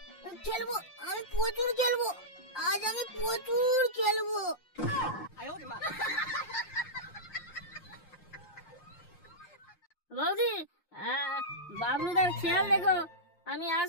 আমি প্রচুর খেলবো, আজ আমি প্রচুর খেলবো। বৌদি, বাবলুদার খেয়াল দেখো, আমি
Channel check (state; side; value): late; right; 5.7 ms